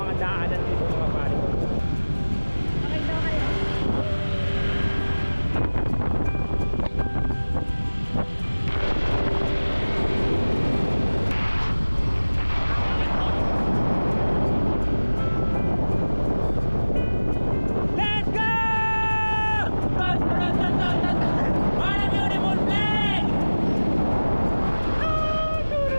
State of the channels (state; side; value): inverted; both; correlation -1.00